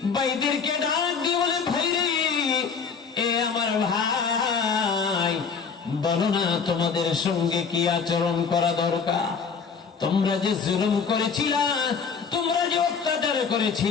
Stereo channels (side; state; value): right; quieter; 5.8 dB